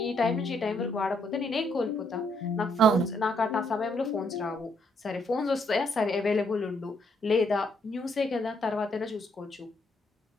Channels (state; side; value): normal; both; correlation 0.72